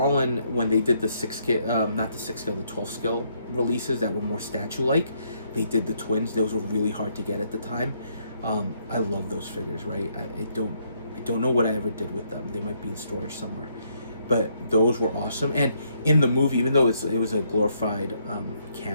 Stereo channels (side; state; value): both; inverted; correlation -0.72